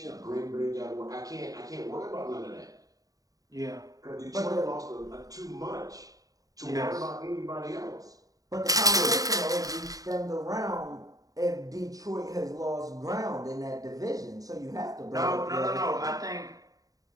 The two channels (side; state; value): left; late; 0.17 ms